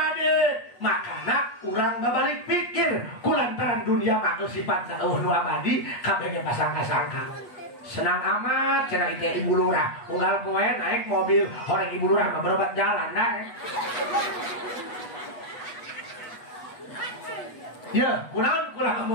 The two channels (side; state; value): right; late; 8.3 ms